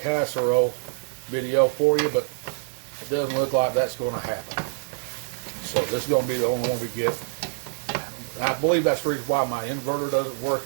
video for you, but it doesn't look like that's going to happen. So this is going to be the only one we get. I believe that's the reason why my inverter doesn't work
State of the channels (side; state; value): left; silent; digital silence